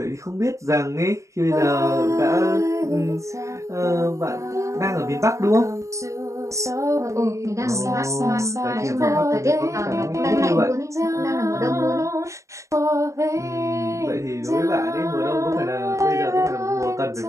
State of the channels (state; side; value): late; left; 0.15 ms